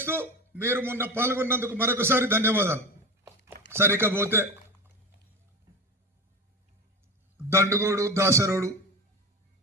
మీరు మొన్న పాల్గొన్నందుకు మరొకసారి ధన్యవాదాలు. సరికపోతే దండుగోడు దాసరోడు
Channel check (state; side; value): normal; both; correlation 0.25